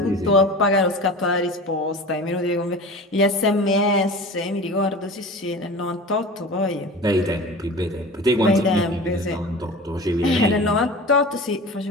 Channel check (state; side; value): normal; both; correlation 0.36